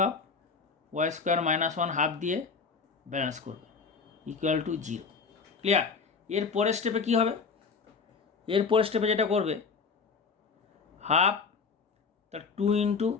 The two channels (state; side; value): quieter; right; 5.2 dB